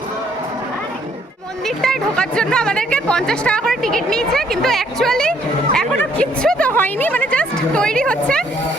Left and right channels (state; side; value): normal; both; correlation 0.66